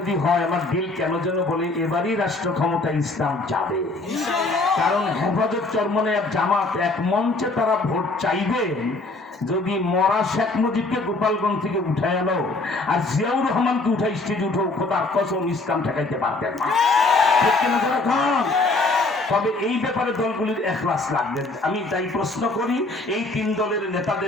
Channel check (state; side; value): quieter; right; 3.2 dB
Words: হয়, আমার দিল কেন যেন বলে এবারই রাষ্ট্র ক্ষমতায় ইসলাম যাবে। কারণ হেফাজত, চরমনে, জামাত এক মঞ্চে তারা ভোট চাইবেন। যদি মরা শেখ মুজিবকে গোপালগঞ্জ থেকে উঠায় আনো আর জিয়াউর রহমানকে উঠাই স্টেজে উঠো, খোদার কসম ইসলাম ঠেকাইতে পারবেন না, ঠিক কিনা? জোরে খান। তবে এই ব্যাপারে দলগুলির এখলাস লাগবে। আমি তাই প্রশ্ন করি, এই 3 দলের